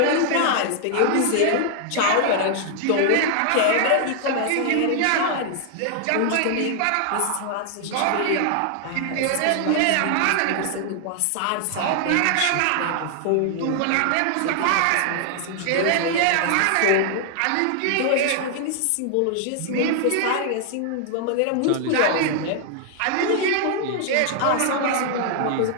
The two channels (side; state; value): both; different; correlation 0.00